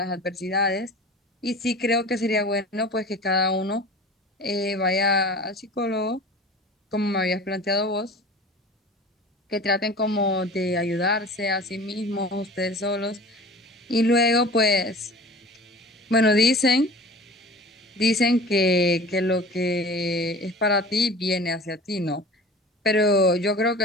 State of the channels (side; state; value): both; normal; correlation 0.40